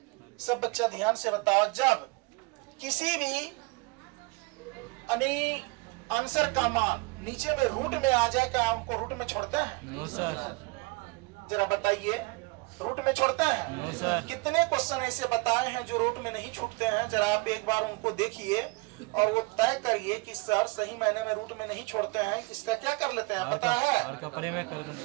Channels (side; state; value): left; quieter; 26.5 dB